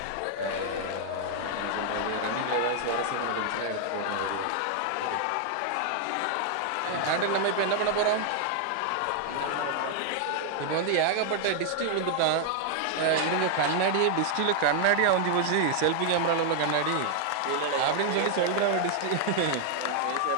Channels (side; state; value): both; different; correlation 0.00